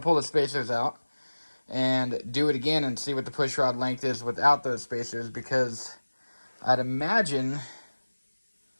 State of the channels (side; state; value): both; inverted; correlation -1.00